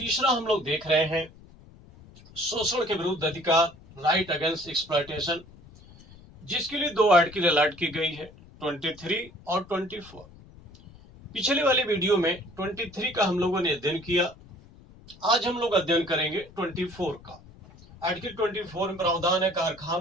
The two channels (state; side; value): noise; left; rumble, 22 dB below the sound